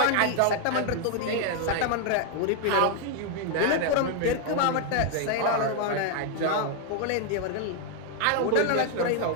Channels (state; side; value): different; both; correlation 0.00